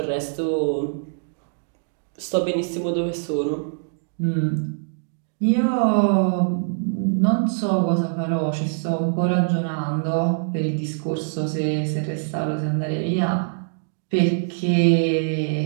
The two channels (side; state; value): left; silent; digital silence